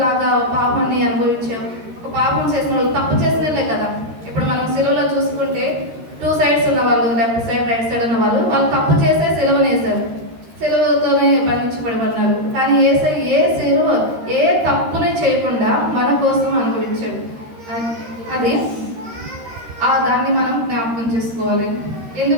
పాపాన్ని అనుభవించే ఒక పాపం చేసిన వాళ్ళు, తప్పు చేసినలే కదా. ఇప్పుడు మనం సిలువలో చూసుకుంటే 2 sides ఉన్న వాళ్ళు, లెఫ్ట్ సైడ్ రైట్ సైడ్ ఉన్న వాళ్ళు తప్పు చేసే సిలువనేసారు. సిలువతోనే బంధించబడమన్నారు. కానీ ఏ సిలువ ఏ తప్పుని చేయకుండా మన కోసం అనుభవించాడు. అది దాన్ని మనం జ్ఞాపకం చేసుకోవాలి.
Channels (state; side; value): late; left; 13 ms